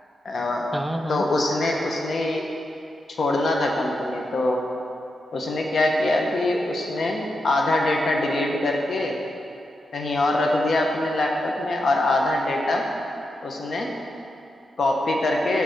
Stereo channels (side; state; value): both; normal; correlation 0.86